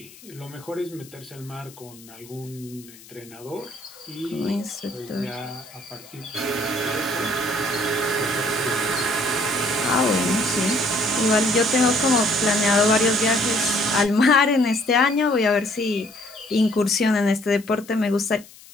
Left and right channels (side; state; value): left; noise; hiss, 21 dB below the sound